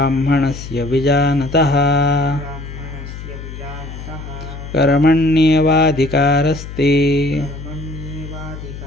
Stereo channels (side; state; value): left; noise; hum, 11 dB below the sound